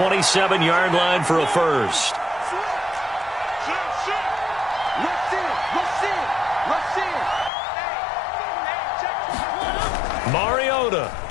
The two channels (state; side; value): drops out; right; at 7.5 s